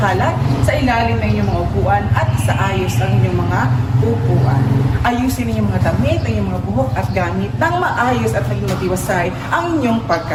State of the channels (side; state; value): both; identical; correlation 1.00